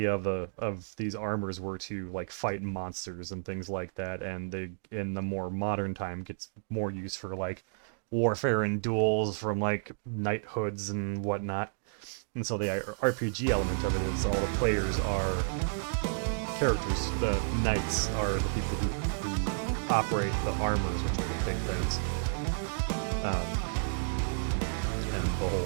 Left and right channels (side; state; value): left; silent; digital silence